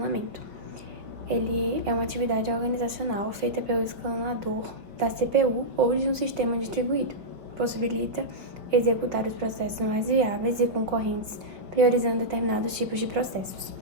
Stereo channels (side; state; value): left; late; 5.4 ms